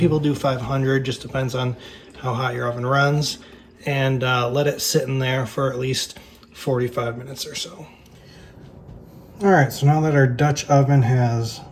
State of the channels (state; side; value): identical; both; correlation 1.00